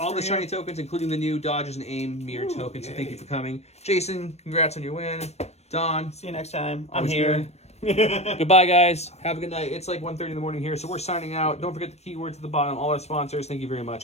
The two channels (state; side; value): late; right; 0.31 ms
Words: for the you. shiny tokens, including the new Dodges and Aim mirror tokens. So thank you for coming. Jason, congrats on your win. Don. See you next time. I'm always here. good. Goodbye, guys. Have a good night. It's like 1:30 in the morning here, so we're signing out. Don't forget the keywords at the bottom. All our sponsors, thank you very much.